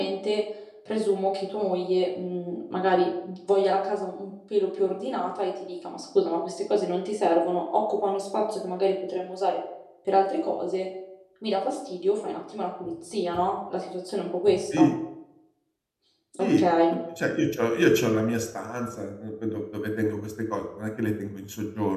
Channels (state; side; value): identical; both; correlation 1.00